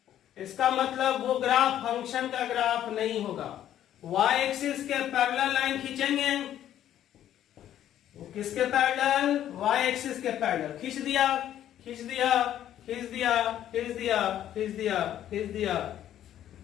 इसका मतलब वो ग्राफ फंक्शन का ग्राफ नहीं होगा। y एक्सिस के पैरेलल लाइन खींचेंगे, किसके पैरेलल? वाई एक्सिस के पैरेलल। खींच दिया, खींच दिया, खींच दिया, खींच दिया, खींच दिया, खींच दिया।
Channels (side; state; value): right; quieter; 11.4 dB